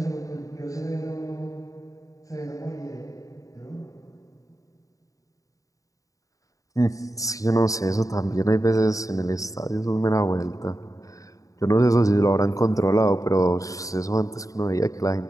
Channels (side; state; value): right; late; 0.16 ms